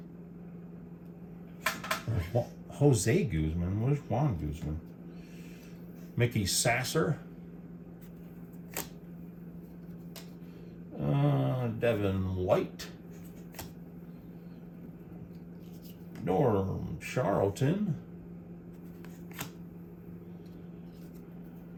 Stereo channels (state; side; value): identical; both; correlation 1.00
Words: Jose Guzman? Where's Juan Guzman? Mickey Sasser. Devin White. Norm Charlton.